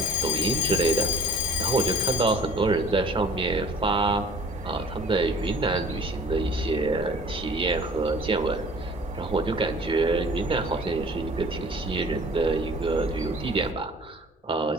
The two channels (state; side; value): normal; both; correlation 0.49